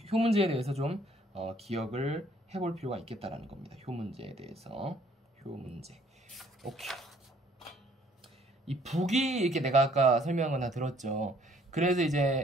효문제에 대해서 좀 기억을 해볼 필요가 있겠다라는 겁니다. 효문제에 대해서. 효문제. 오케이. 이 북이 이렇게 내가 아까 설명한 건 다 들었죠. 그래서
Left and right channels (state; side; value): normal; both; correlation 0.61